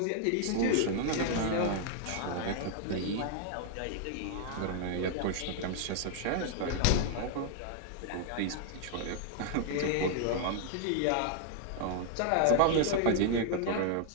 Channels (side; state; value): both; different; correlation 0.00